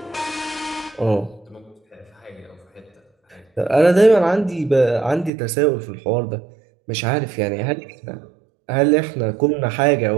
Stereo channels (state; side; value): drops out; left; at 5.3 s